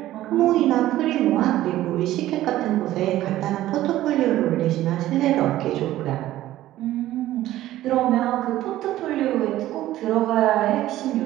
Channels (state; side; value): quieter; left; 14.6 dB